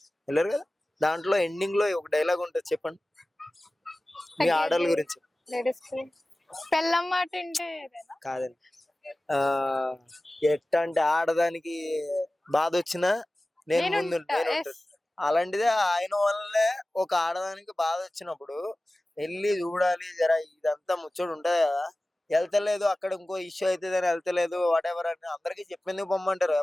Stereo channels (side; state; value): both; normal; correlation 0.97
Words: కదా, దాంట్లో ఎండింగ్ లో ఒక డైలాగ్ ఉంటుంది, చెప్పండి మీ ఆడల గురించి. లేడీస్ పెళ్ళం మాట అంటే కాదండి, ఎట్ట అంటే ఆడదానికి బాధ వచ్చినా నేను ముందు ఉంటాను. అలాంటిదే ఆయన వల్లే ఒక ఆడదానికి బాధ వచ్చినప్పుడు వెళ్ళి చూడాలి, జరా ఇదంతా ముచ్చడు ఉంటది కదా, వెళ్తలేదు అక్కడ ఇంకో ఇష్యూ అవుతుంది అని వెళ్తలేదు వాట్ ఎవర్ అని అందరికి చెప్పింది పొమ్మంటారు.